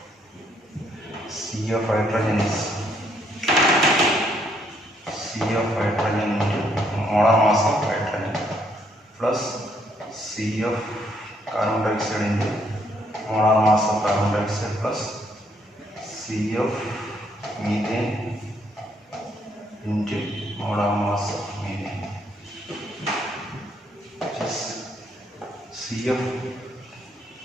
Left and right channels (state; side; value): normal; both; correlation 0.70